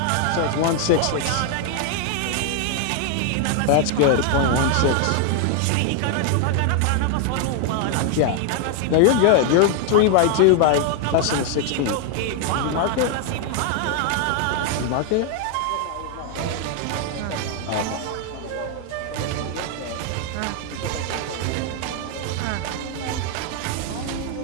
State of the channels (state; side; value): different; both; correlation 0.01